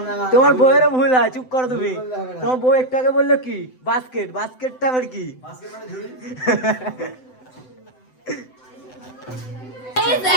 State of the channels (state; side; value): late; right; 7.9 ms